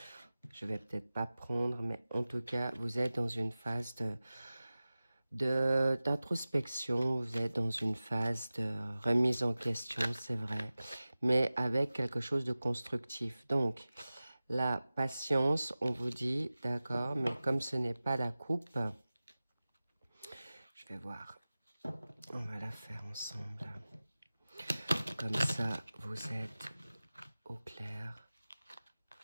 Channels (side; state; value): both; inverted; correlation -0.97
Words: je vais peut-être pas prendre, mais en tout cas, vous êtes dans une phase d'introspection, vous êtes dans une phase de remise en question, c'est vrai, mais avec quelque chose de constructif. Donc, la patience, on vous dit, d'accord, mais comme ce n'est pas la coupe, je vais voir, on va la faire ensemble. Comme ça, vous êtes au clair